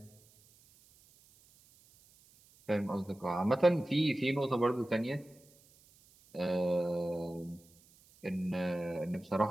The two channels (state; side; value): noise; right; hiss, 28 dB below the sound